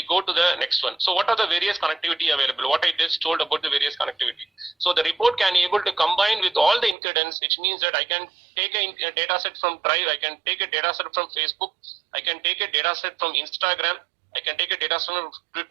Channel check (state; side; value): drops out; left; at 7.0 s